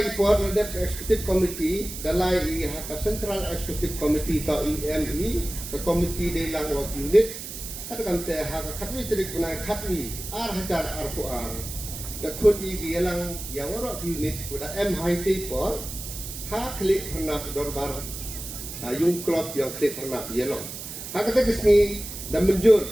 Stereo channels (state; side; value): noise; right; hiss, 9 dB below the sound